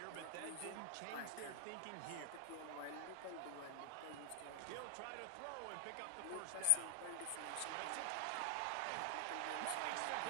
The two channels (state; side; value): different; both; correlation 0.00